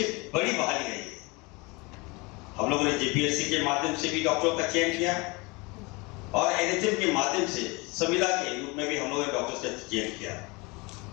बड़ी बहाली रही है। हम लोगों ने जेपीएससी के माध्यम से भी डॉक्टरों का चयन किया और एनएचएम के माध्यम से संविदा के रूप में भी हम लोगों ने डॉक्टर्स का चयन किया।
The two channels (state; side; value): quieter; right; 26.3 dB